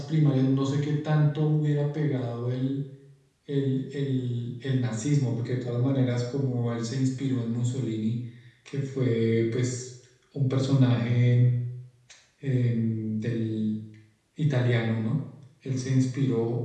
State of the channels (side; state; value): both; identical; correlation 1.00